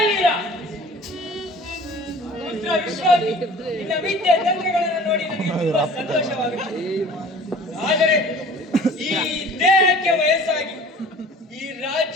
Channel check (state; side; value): normal; both; correlation 0.46